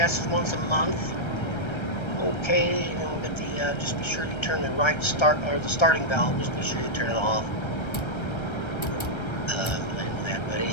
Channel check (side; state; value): right; late; 1.3 ms